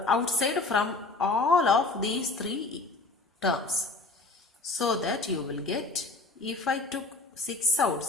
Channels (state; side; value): quieter; right; 3.3 dB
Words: outside from all of these 3 terms. So that you will get, if I took 6